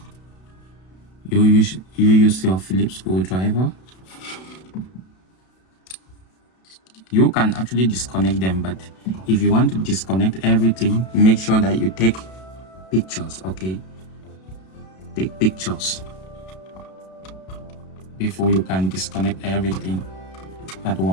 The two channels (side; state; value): right; late; 32 ms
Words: you use your Phillips screwdriver. You can actually disconnect them, but if you want to disconnect everything, make sure that you take pictures, okay? Take pictures before you can disconnect everything at